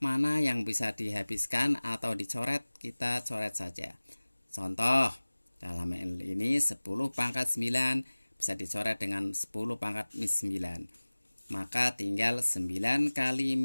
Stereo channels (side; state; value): both; inverted; correlation -1.00